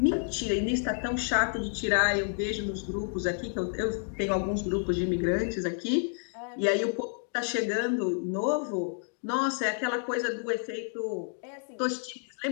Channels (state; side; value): silent; right; 58 dB below the other